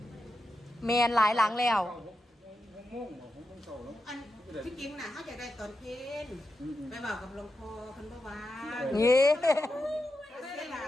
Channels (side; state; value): both; normal; correlation 0.89